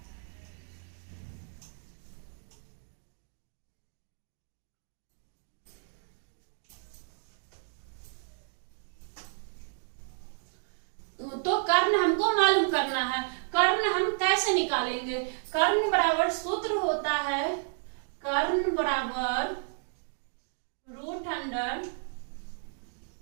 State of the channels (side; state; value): left; silent; digital silence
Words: तो कर्ण हमको मालूम करना है। कर्ण हम कैसे निकालेंगे? कर्ण बराबर सूत्र होता है, कर्ण बराबर रूट अंडर